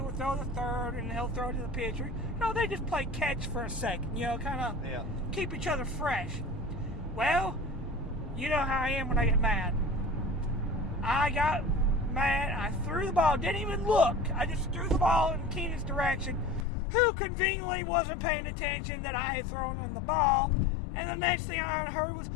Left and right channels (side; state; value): right; drops out; at 16.7 s